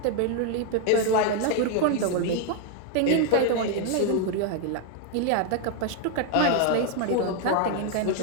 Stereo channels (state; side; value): different; both; correlation 0.01